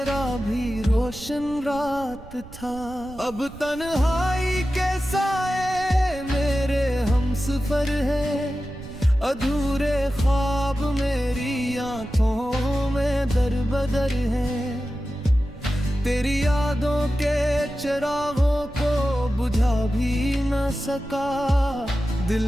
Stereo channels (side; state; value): right; noise; rumble, 17 dB below the sound